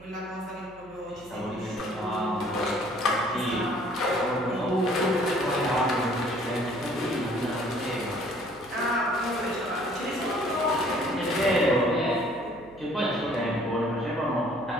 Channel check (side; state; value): right; noise; hum, 24 dB below the sound